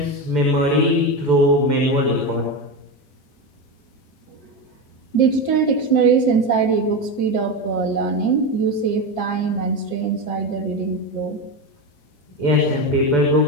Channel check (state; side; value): late; right; 6.8 ms